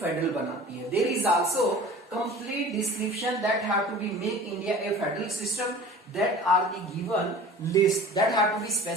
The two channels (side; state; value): both; normal; correlation 0.42